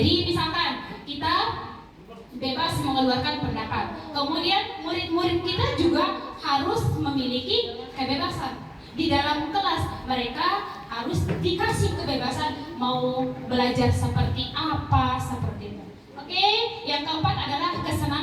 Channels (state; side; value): identical; both; correlation 1.00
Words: misalkan kita bebas mengeluarkan pendapat. Kemudian murid-murid kita juga harus memiliki kebebasan. Di dalam kelas mereka harus dikasih kebebasan mau belajar seperti apa, seperti itu. Oke, yang keempat adalah